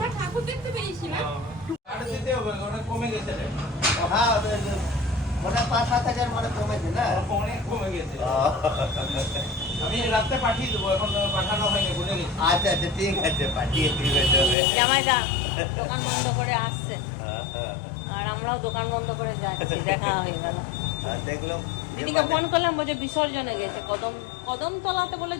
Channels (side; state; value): right; drops out; at 14.6 s